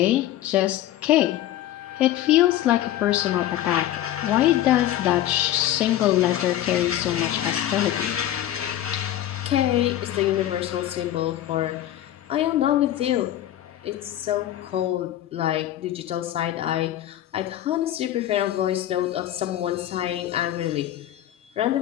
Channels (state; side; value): quieter; right; 12.9 dB